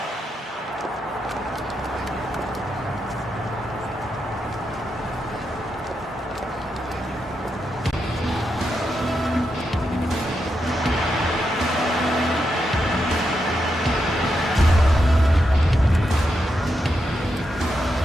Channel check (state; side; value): normal; both; correlation 0.84